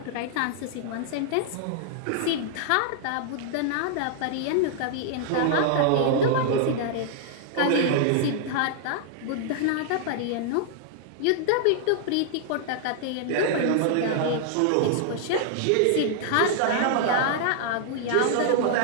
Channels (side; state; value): both; different; correlation -0.01